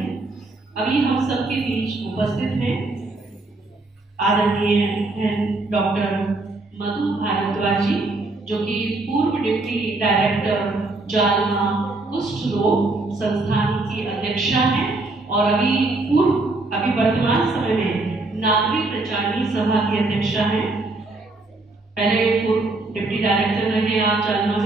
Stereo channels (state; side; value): quieter; left; 3.1 dB